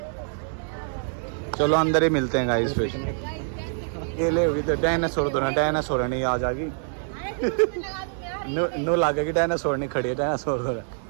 चलो अंदर ही मिलते हैं गाइस फिर। ये ले हुई तो डायनासोर तो ना, डायनासोर नहीं आ जाएगी। नो लागेगी डायनासोर नहीं खड़ी है, डायनासोर तो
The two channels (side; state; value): left; silent; digital silence